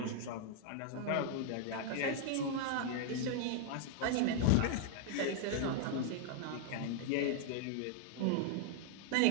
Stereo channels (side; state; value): both; different; correlation 0.00